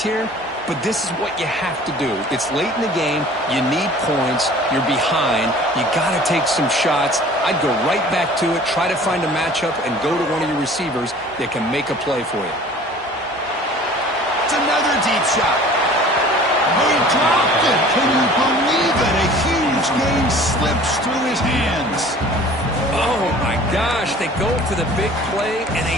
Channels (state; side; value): normal; both; correlation 0.47